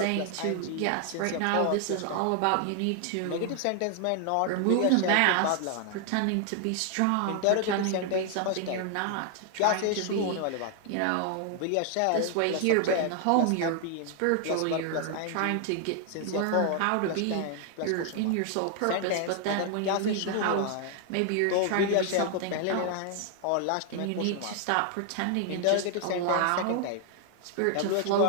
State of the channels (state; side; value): different; both; correlation 0.00